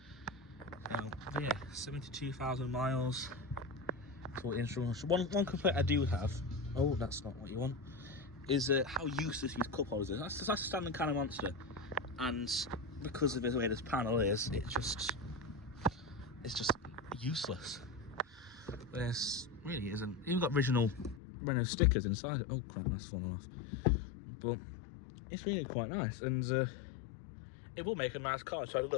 Yeah, 72,000 miles. One complaint I do have, oh, that's not what you want, is how useless these cup holders are. That's a standard kind of monster, and because of the way this panel is, it's just useless. This really isn't. Even got original Renault stickers inside it. Oh crap, that's fallen off. But it's really quite nice, and it will make a nice car. So I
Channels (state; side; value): drops out; right; at 21.2 s